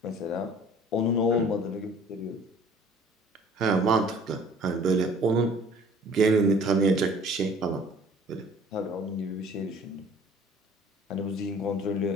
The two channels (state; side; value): normal; both; correlation 0.51